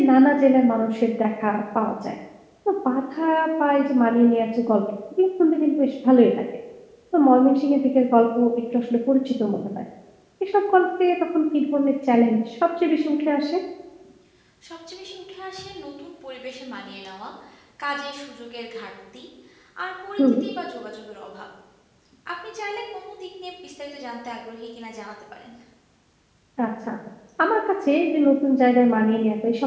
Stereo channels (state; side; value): identical; both; correlation 1.00